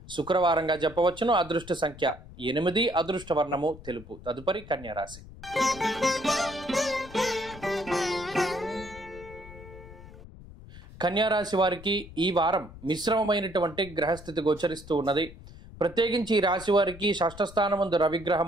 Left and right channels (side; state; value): left; noise; rumble, 17 dB below the sound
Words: శుక్రవారంగా చెప్పవచ్చును. అదృష్ట సంఖ్య 8, అదృష్ట వర్ణము తెలుపు. తదుపరి కన్యారాశి. కన్యారాశి వారికి ఈ వారం మిశ్రమమైనటువంటి గ్రహస్థితి గోచరిస్తూ ఉన్నది. ప్రత్యేకించి ఈ రాశి వారికి షష్ఠ స్థానమందు